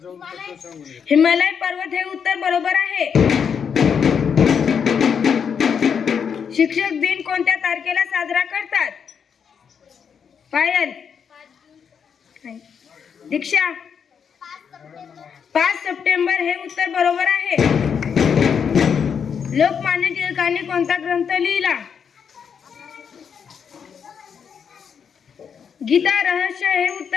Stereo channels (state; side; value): quieter; right; 7.0 dB